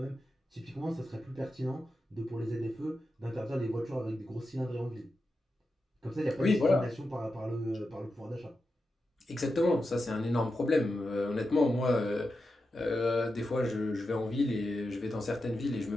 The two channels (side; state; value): both; normal; correlation 0.90